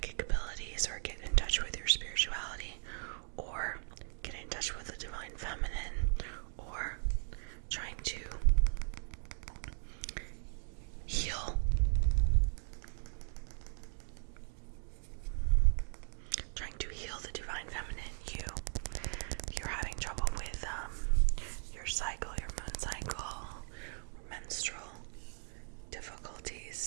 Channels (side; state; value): left; silent; 53 dB below the other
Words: abilities or get in touch with your spirituality or get in touch with the divine feminine or trying to heal. Trying to heal the divine feminine you. If you're having trouble with your cycle, your moon cycle, or menstrual